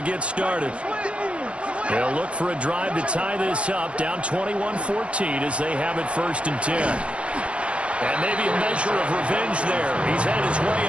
started. They'll look for a drive to tie this up, down 21-14 as they have it 1st and 10. And maybe a measure of revenge there. He's had his way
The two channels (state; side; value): late; left; 0.060 ms